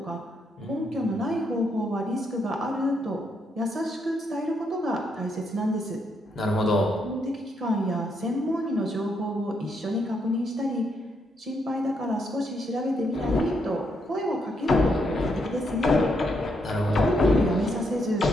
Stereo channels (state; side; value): normal; both; correlation 0.77